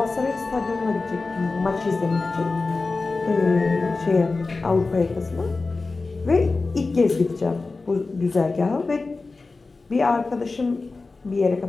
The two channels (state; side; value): quieter; right; 3.8 dB